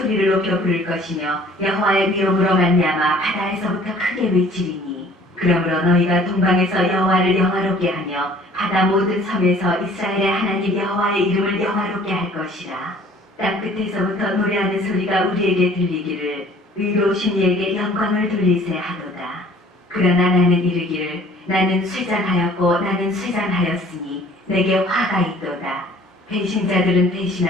높여 부를 것이며 여호와의 위엄으로 말미암아 바다에서부터 크게 외치리니 그러므로 너희가 동방에서 여호와를 영화롭게 하며 바다 모든 섬에서 이스라엘의 하나님 여호와의 이름을 영화롭게 할 것이라. 땅 끝에서부터 노래하는 소리가 우리에게 들리기를 의로우신 이에게 영광을 돌리세 하도다. 그러나 나는 이르기를 나는 쇠잔하였고 나는 쇠잔하였으니 내게 화가 있도다. 배신자들은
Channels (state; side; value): normal; both; correlation 0.53